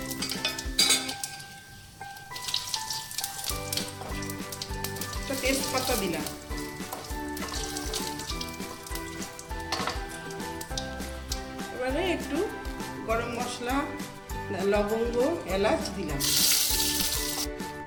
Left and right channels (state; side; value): identical; both; correlation 1.00